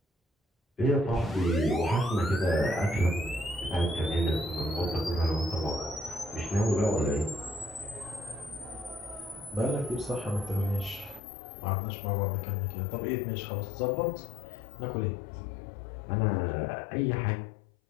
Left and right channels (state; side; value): drops out; right; at 11.2 s